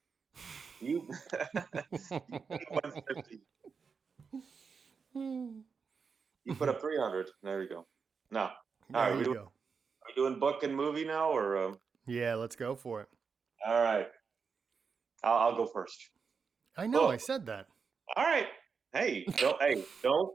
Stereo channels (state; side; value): quieter; left; 5.6 dB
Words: You 150. You put up 300. There you go. No. All right. Are we doing book and movie now, or? Yeah, let's go for it. All right. I'll go first. I know. I said that. All right. Hey,